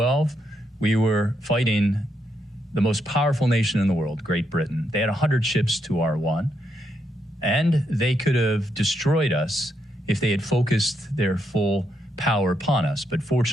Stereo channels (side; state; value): both; normal; correlation 0.80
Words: we were fighting the most powerful nation in the world, Great Britain. They had 100 ships to our 1, and they could have destroyed us if they had focused their full power upon us. But